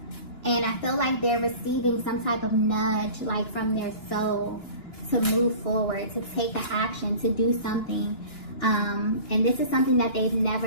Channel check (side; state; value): right; late; 2.9 ms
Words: And I feel like they're receiving some type of nudge, like from their soul, to move forward, to take an action, to do something. And this is something that they've